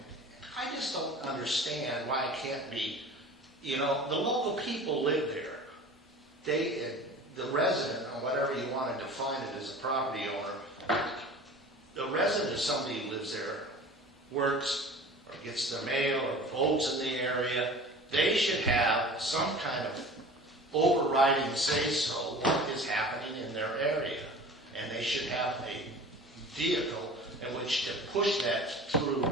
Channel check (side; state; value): both; normal; correlation 0.40